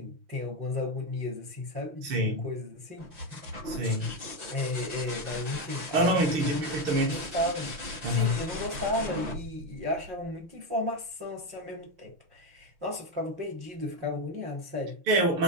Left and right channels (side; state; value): left; late; 6.0 ms